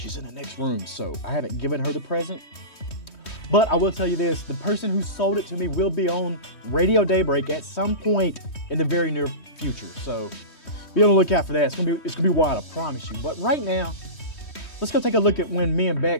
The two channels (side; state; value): right; late; 3.2 ms